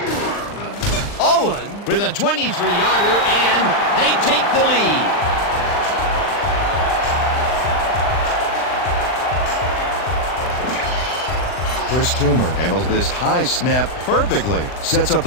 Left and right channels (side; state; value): right; late; 39 ms